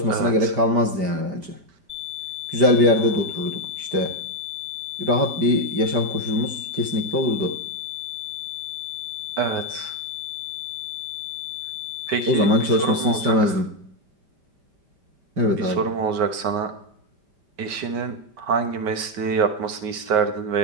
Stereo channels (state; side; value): late; left; 5.1 ms